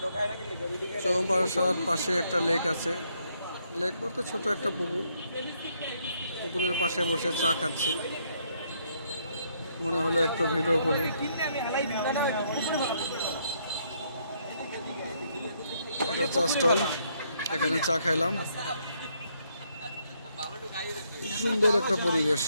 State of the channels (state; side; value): inverted; both; correlation -0.72